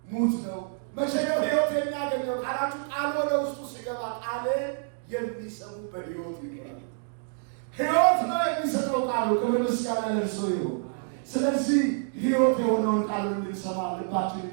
ነው። መቼ ነው ሕይወት የሚያገኘው? ቃላችሁ ቃል ወደ ውስጡ ሲገባ ቃል የሚሰሙ በሕይወት ይገባል። ሕይወት ነው የሚሰጠው ቃሉ። ክብር ምስጋና ለእርሱ ይሁን። ስለዚህ ሕይወት የሆነውን ቃሉ እንድንሰማ ልባችንን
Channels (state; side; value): silent; left; digital silence